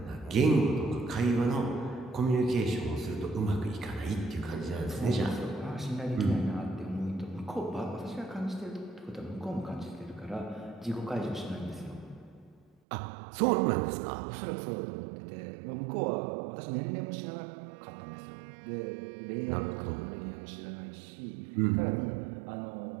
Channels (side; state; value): left; drops out; at 12.8 s